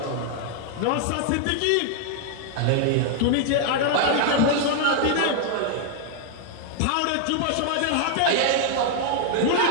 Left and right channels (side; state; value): both; different; correlation 0.00